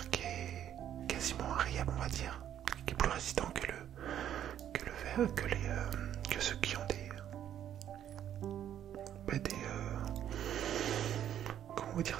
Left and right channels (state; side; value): quieter; left; 10.4 dB